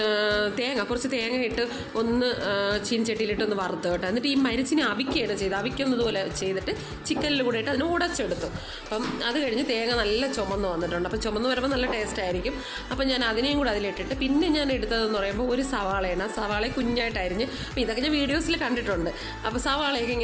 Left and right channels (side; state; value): both; identical; correlation 1.00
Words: കുറച്ച് തേങ്ങ ഇട്ട് ഒന്ന് ചീനച്ചട്ടിയിലിട്ട് ഒന്ന് വറുത്ത് കേട്ടോ. എന്നിട്ട് ഈ മരിച്ചിനെ അവിക്കുകയാണ് ചെയ്തത്. അവിക്കുന്നതുപോലെ ചെയ്തിട്ട് ചിക്കനിൽ കൂടെ ഇട്ട് അതിന് ഉടച്ചെടുത്തു. അപ്പം അത് കഴിഞ്ഞ് തേങ്ങ നല്ല ചുമന്ന് വന്നിട്ടുണ്ട്. അപ്പം ചുമന്ന് വരുമ്പോൾ നല്ല ടേസ്റ്റ് ആയിരിക്കും. അപ്പം ഞാൻ അതിനെയും കൂടെ അതിലിട്ടിട്ട് പിന്നെ ഞാൻ എടുത്തതെന്ന് പറയുമ്പോൾ ഒരു സവാളയാണ്. സവാള കുഞ്ഞായിട്ടായിരിഞ്ഞ്. അപ്പോൾ ഇതൊക്കെ ഞാൻ വീഡിയോസിൽ കണ്ടിട്ടുണ്ട്. അപ്പോൾ സവാളയൊക്കെ